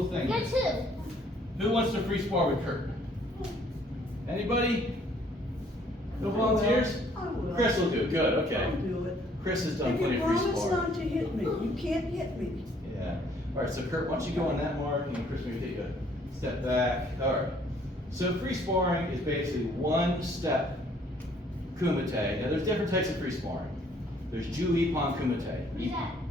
thing. Get two. Who wants to free spar with Kurt? Anybody? No volunteers? I will. Chris will do it. Good, okay. I'll do it. Chris has done If plenty you of free promise sparring. not to hit me, you can't hit me. Yeah. All right, so Kurt, why don't you go on that mark and Chris maybe take a step back. All right. So free sparring is basically one step kumite. Now there's different types of free sparring. There's Ju-Ippon kumite. What is that?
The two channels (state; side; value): normal; both; correlation 0.62